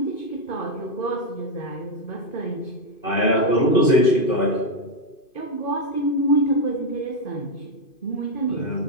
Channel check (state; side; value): late; right; 2.5 ms